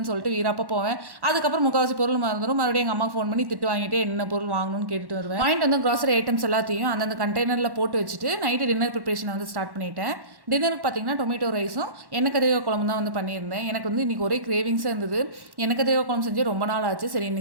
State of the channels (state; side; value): late; left; 1.1 ms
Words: சொல்லிட்டு வீராப்போ போவேன். அதுக்கப்புறம் முக்கால்வாசி பொருள் மறந்துடும். மறுபடியும் எங்கள் அம்மாவுக்கு ஃபோன் பண்ணி திட்டு வாங்கிட்டு என்ன பொருள் வாங்கணும்னு கேட்டுட்டு வருவேன். வாங்கிட்டு வந்து க்ராசரி ஐட்டம்ஸ் எல்லாத்தையும் அந்தந்த கண்டெய்னரில் போட்டு வச்சுட்டு நைட்டு டின்னர் ப்ரிப்பரேஷனை வந்து ஸ்டார்ட் பண்ணிட்டேன். டின்னருக்கு பார்த்தீங்கன்னா டொமேட்டோ ரைஸும் எண்ணெய் கத்திரிக்காய் குழம்பு தான் வந்து பண்ணியிருந்தேன். எனக்கு வந்து இன்றைக்கி ஒரே கிரேவிங்ஸாக இருந்தது. எண்ணெய் கத்திரிக்காய் குழம்பு செஞ்சு ரொம்ப நாள் ஆச்சு. சரி